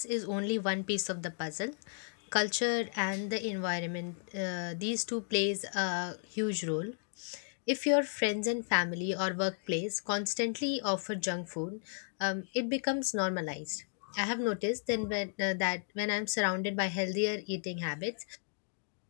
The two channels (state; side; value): silent; right; digital silence